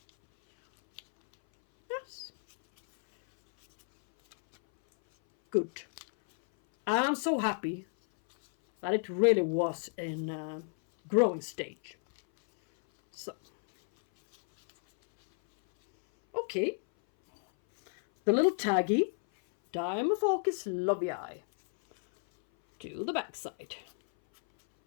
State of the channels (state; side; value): silent; right; 57 dB below the other